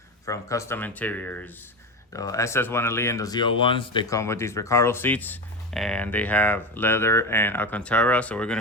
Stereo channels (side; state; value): both; normal; correlation 0.22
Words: from Kustom Interiors. The SS 1LE and the ZL1s, they come with these Recaro seats and they have leather and Alcantara. So we're going